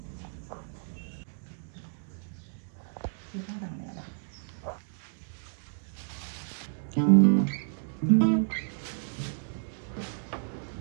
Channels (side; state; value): left; silent; digital silence